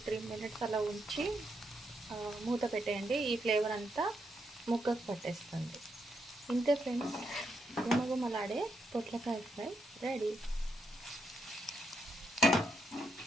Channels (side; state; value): both; normal; correlation 0.80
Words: మినిట్స్ అలా ఉంచి మూత పెట్టేయండి. ఈ ఫ్లేవర్ అంతా ముక్కకు పట్టేస్తుంది. ఇంతే ఫ్రెండ్స్, గుమగుమలాడే పొట్లకాయ ఫ్రై రెడీ.